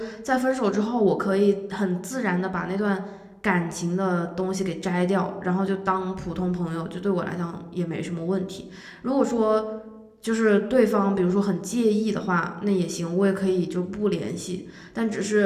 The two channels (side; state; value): both; identical; correlation 1.00